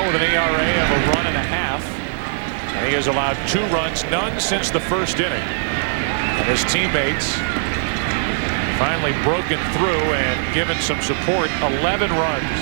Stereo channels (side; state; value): left; silent; digital silence